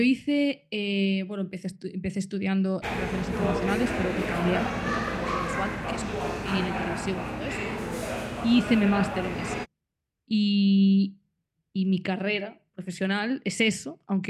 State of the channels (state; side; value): identical; both; correlation 1.00